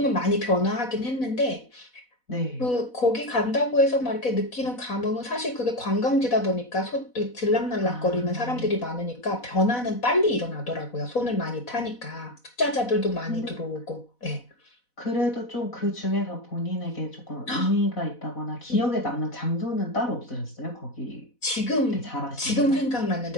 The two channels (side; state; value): right; late; 4.1 ms